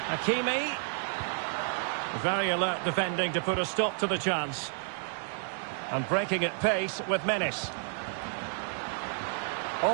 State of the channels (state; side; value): silent; left; 57 dB below the other